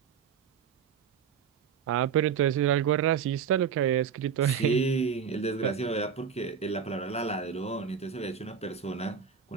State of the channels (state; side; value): quieter; left; 7.2 dB